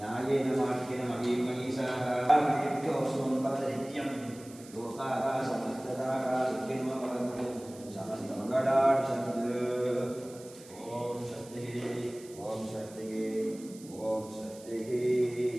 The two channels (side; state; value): right; noise; hiss, 20 dB below the sound